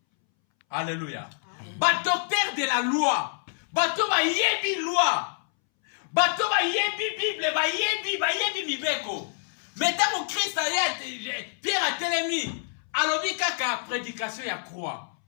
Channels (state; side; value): silent; right; 60 dB below the other